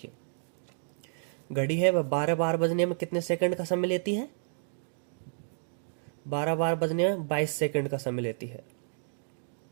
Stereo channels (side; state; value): left; silent; digital silence